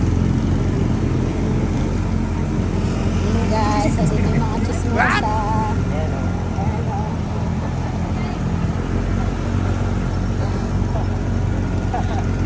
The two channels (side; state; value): both; identical; correlation 1.00